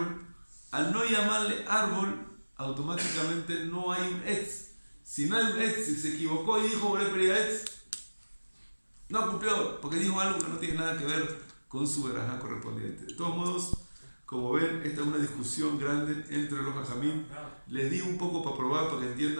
Al no llamarle árbol, automáticamente no hay un Etz. Si no hay un Etz, si se equivocó y dijo Boré Pri Etz, no cumplió, porque dijo algo que no tiene nada que ver con su verajá correspondiente. De todos modos, como ven, esta es una discusión grande entre los hajamim. Les di un poco para probar, para que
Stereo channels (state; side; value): inverted; both; correlation -1.00